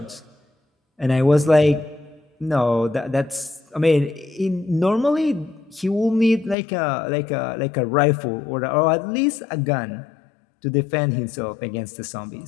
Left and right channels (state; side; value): drops out; right; at 6.6 s